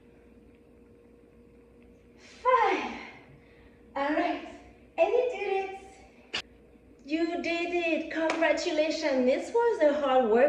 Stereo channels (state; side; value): identical; both; correlation 1.00